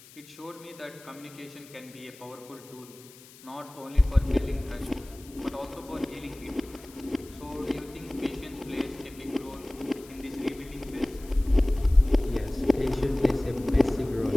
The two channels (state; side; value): noise; left; hiss, 21 dB below the sound